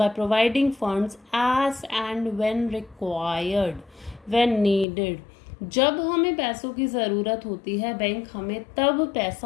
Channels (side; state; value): right; drops out; at 4.9 s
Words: providing funds as and when required, when needed. जब हमें पैसों की ज़रूरत होती है बैंक हमें तब